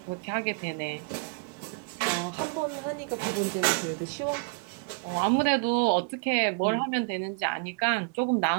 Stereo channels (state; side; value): quieter; left; 35.0 dB